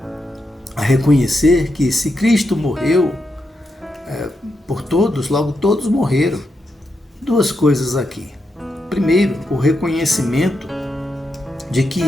a reconhecer que se Cristo morreu por todos, logo todos morreram. Duas coisas aqui. Primeiro, o reconhecimento de que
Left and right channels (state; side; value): normal; both; correlation 0.85